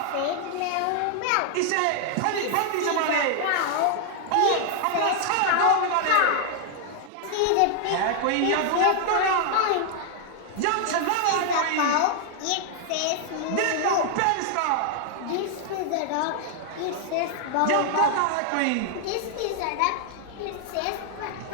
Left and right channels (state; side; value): different; both; correlation 0.00